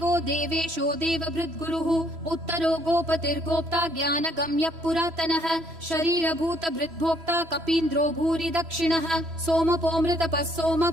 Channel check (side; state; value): left; late; 3.0 ms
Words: देवेशो देवभृद्गुरुः उत्तरो गोपतिर्गोप्ता ज्ञानगम्यः पुरातनः शरीरभूतभृद्भोक्ता कपीन्द्रो भूरि दक्षिणः सोमपोऽमृतपः